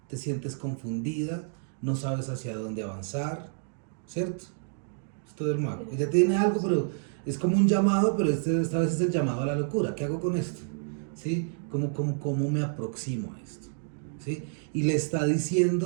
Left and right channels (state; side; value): silent; left; digital silence